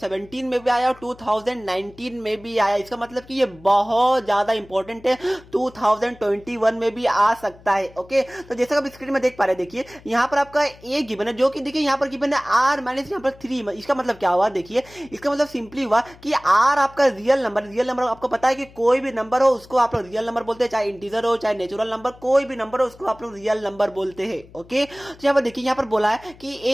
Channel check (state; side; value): noise; left; hum, 23 dB below the sound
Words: में भी आया और 2019 में भी आया। इसका मतलब कि ये बहुत ज्यादा इंपॉर्टेंट है, 2021 में भी आ सकता है। ओके, तो जैसा कि आप स्क्रीन में देख पा रहे हैं, देखिए यहाँ पर आपका ए गिवन है, जो कि देखिए यहाँ पर गिवन है r माइनस यहाँ पर 3। इसका मतलब क्या हुआ, देखिए इसका मतलब सिंपली हुआ कि r आपका रियल नंबर आपको पता है कि कोई भी नंबर हो उसको आप लोग रियल नंबर बोलते हैं, चाहे इंटीजर हो चाहे नेचुरल नंबर, कोई भी नंबर हो उसको आप लोग रियल नंबर बोलते हैं। ओके, तो यहाँ पर देखिए यहाँ पर पर बोला है कि